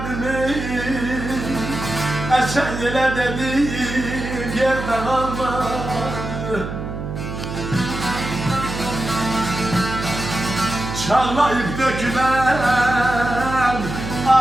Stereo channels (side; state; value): right; noise; hum, 6 dB below the sound